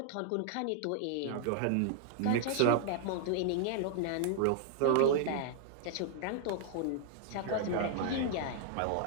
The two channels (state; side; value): different; both; correlation -0.01